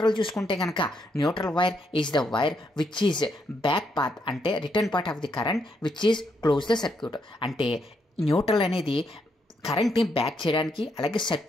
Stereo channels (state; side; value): normal; both; correlation 0.77